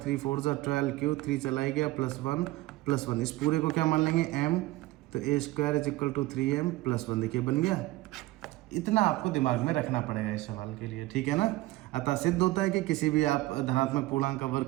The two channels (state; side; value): quieter; left; 18.9 dB